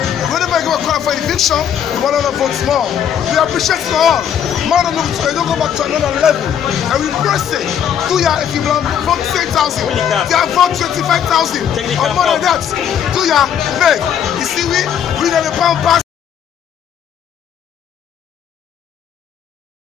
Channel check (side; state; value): right; quieter; 8.9 dB